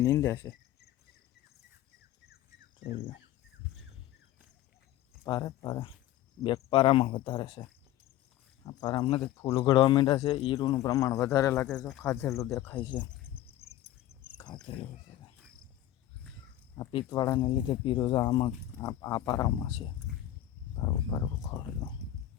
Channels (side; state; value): right; quieter; 13.3 dB